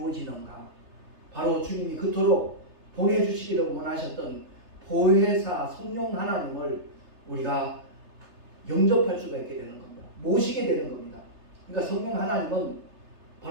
바로 주님이 그토록 보내주시기를 원하셨던 보혜사 성령 하나님을 우리가 영접할 수가 있게 되는 겁니다. 모시게 되는 겁니다. 그러니까 성령 하나님은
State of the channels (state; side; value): late; left; 3.3 ms